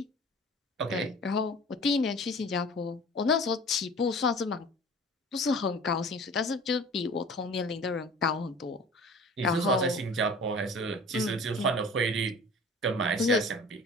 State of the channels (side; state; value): both; normal; correlation 0.44